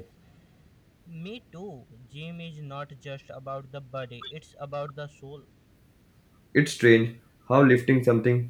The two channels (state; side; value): identical; both; correlation 1.00